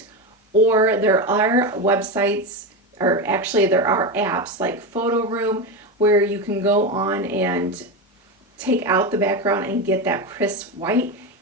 or there are websites, or actually there are apps like Photo Room where you can go on and take out the background and get that crisp white.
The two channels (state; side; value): normal; both; correlation 0.16